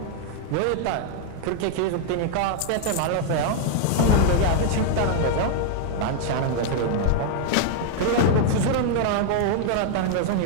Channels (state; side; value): different; both; correlation 0.00